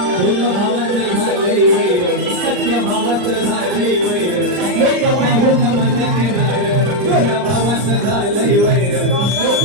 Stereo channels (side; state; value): left; late; 39 ms